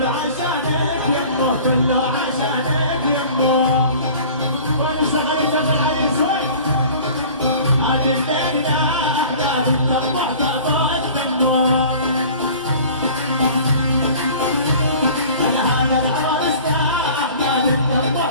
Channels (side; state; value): both; inverted; correlation -0.44